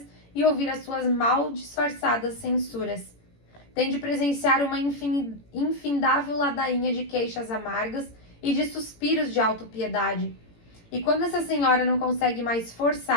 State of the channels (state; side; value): late; right; 18 ms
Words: e ouvir as suas mal disfarçadas censuras. Têm de presenciar uma infindável ladainha de queixas amargas e de suspiros de autopiedade. E quando essa senhora não consegue mais